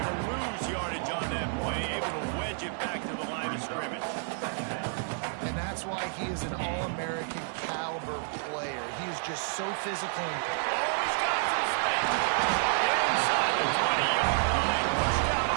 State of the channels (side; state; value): left; silent; 58 dB below the other